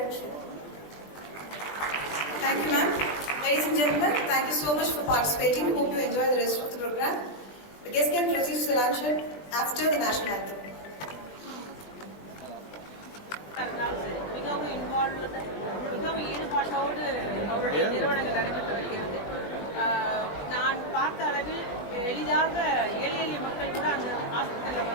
Thank you, ma'am. Ladies and gentlemen, thank you so much for participating. Hope you enjoy the rest of the program. The guest can proceed to the luncheon after the national anthem. மிகவும் ஈடுபாட்டோடு அவருடைய நிறுவனங்கள் நடைபெற்று வருகிறது. நான் பார்த்த அளவில் எளிதாக எளிய மக்கள் கூட அந்த ஹாஸ்பிட்டலில்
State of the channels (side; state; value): right; late; 20 ms